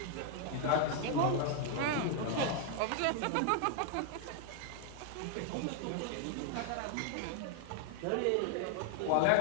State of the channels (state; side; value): different; both; correlation 0.00